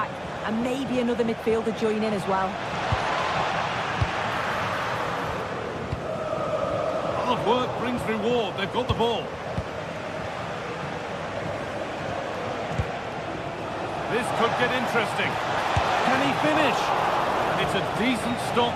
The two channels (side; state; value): both; identical; correlation 1.00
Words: and maybe another midfielder join in as well. Hard work brings reward. They've got the ball. This could get interesting. Can he finish? And it's a decent stop